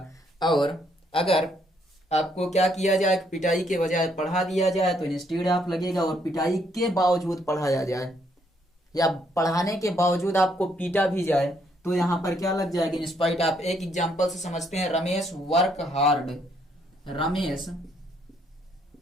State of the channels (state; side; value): normal; both; correlation 0.71